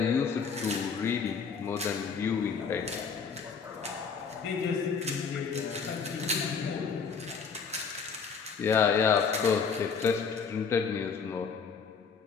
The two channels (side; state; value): right; quieter; 5.9 dB